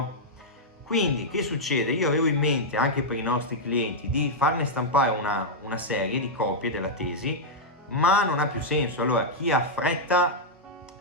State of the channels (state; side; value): normal; both; correlation -0.05